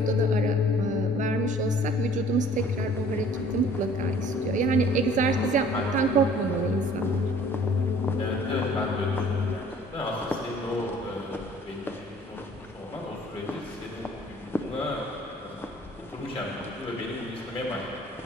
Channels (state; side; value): normal; both; correlation 0.53